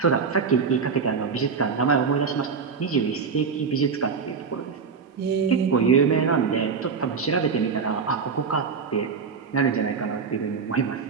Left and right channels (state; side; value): quieter; left; 5.6 dB